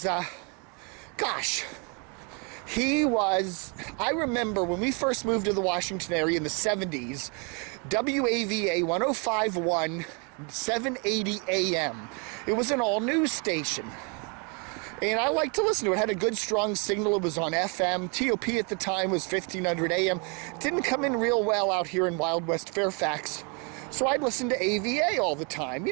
I remember when we first moved to the Washington area in the 70s, WAVA 105.1, 780 AM. It was an all-news station. And I liked to listen to it. It had a good, strong signal. It was on FM. TOP at the time was 1500 AM. It didn't come in real well out here in Wild West Fairfax. So I'd listen to AVA all the time,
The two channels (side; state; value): left; quieter; 34.4 dB